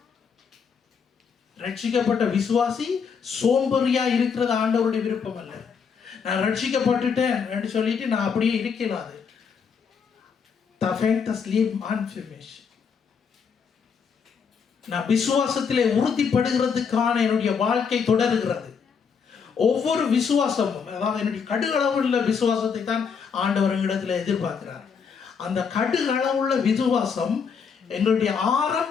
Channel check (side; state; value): right; quieter; 6.3 dB